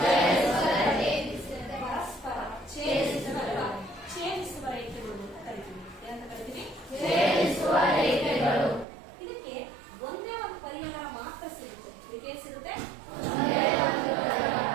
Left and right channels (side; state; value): left; drops out; at 8.8 s